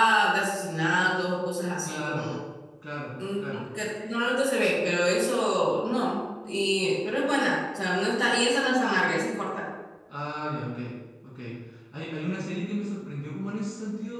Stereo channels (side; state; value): both; identical; correlation 1.00